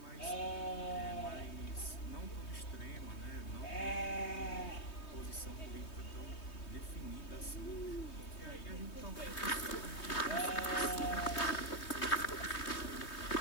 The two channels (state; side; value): late; right; 3.2 ms